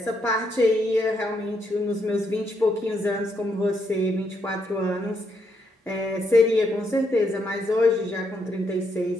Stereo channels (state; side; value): normal; both; correlation 0.77